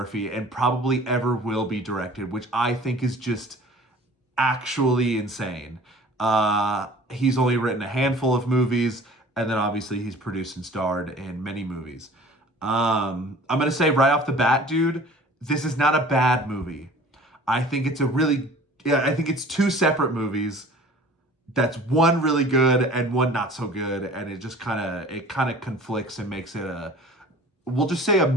and probably ever will be directed, which I think is just actually insane. He's only written a handful of movies, and then obviously he's produced and starred in many movies. I'm gonna say right off the bat, dude, this is not a bad movie. I think it's a really, yeah, I think it's two separate movies. That's one really good and one not so good, and it kind of conflicts and makes it a, we'll just say a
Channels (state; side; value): normal; both; correlation 0.46